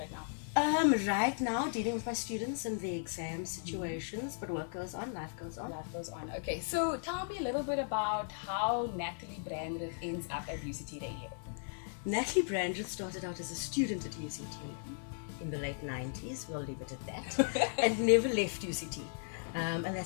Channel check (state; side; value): silent; right; 54 dB below the other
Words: now? Right now, dealing with my students and their exam situations, but work goes on, life goes on. Life goes on. Okay, so tell me a little bit about how Natalie Brandreth ends up at UCT Radio. Natalie Brandreth started out as a student at UCT in the late 90s, we'll leave it at that, and never left UCT. And